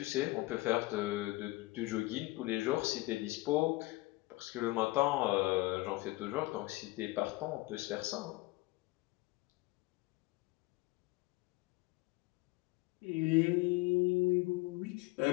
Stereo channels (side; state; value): right; quieter; 21.2 dB